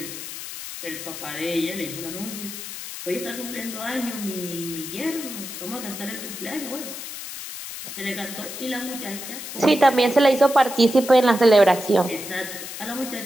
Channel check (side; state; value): left; noise; hiss, 9 dB below the sound